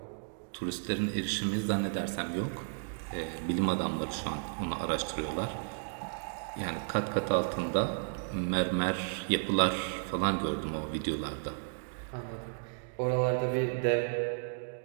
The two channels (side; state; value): left; silent; digital silence